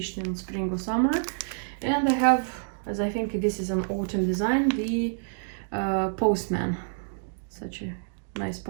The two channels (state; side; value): silent; left; digital silence